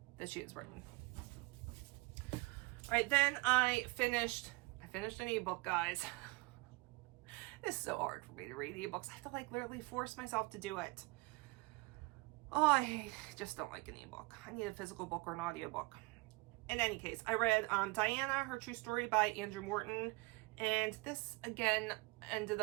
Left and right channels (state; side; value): quieter; left; 24.5 dB